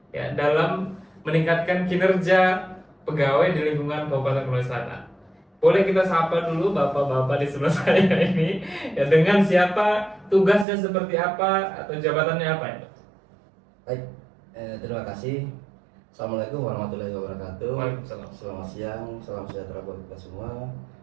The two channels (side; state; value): left; drops out; at 10.7 s